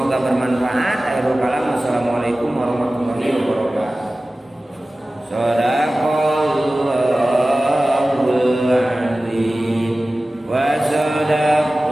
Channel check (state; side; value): normal; both; correlation 0.96